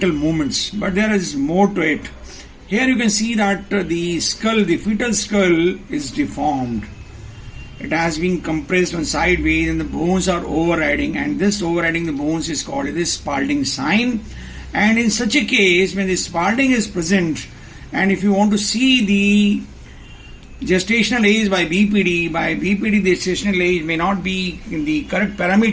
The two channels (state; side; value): identical; both; correlation 1.00